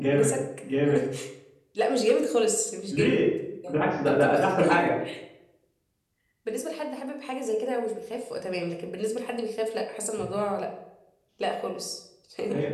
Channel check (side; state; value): both; identical; correlation 1.00